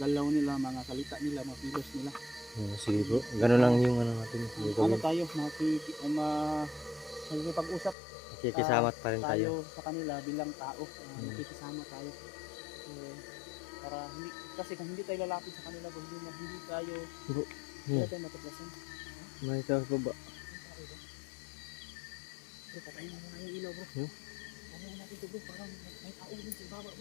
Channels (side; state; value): right; drops out; at 8.0 s